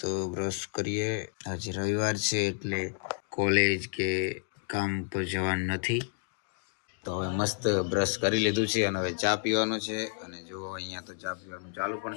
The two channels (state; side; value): silent; right; digital silence